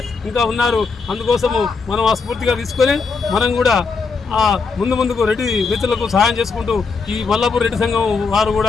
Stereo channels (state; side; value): quieter; right; 4.7 dB